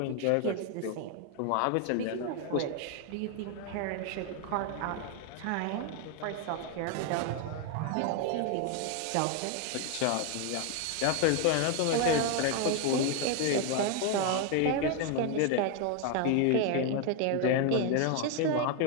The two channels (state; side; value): different; both; correlation 0.01